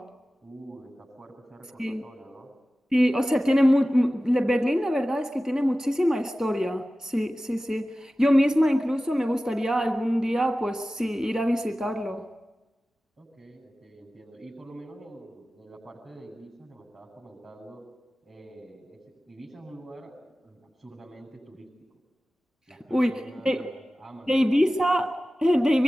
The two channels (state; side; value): normal; both; correlation 0.96